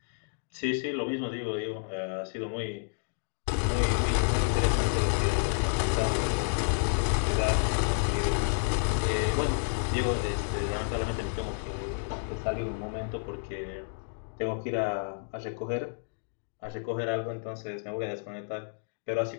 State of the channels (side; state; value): right; silent; digital silence